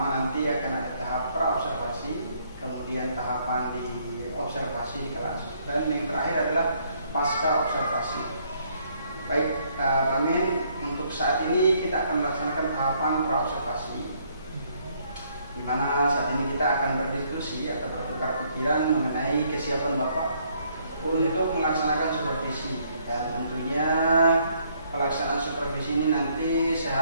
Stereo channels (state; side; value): inverted; both; correlation -0.68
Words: nanti akan ada tahap pra-observasi, kemudian tahapan di observasi di kelas, dan yang terakhir adalah pasca observasi. Baik, Pak Amin, untuk saat ini kita akan melaksanakan tahapan pra-observasi, di mana saat ini kita akan berdiskusi atau bertukar pikiran mengenai kesiapan Bapak untuk melaksanakan supervisi. Dan tentunya pelaksanaan supervisi ini nanti saya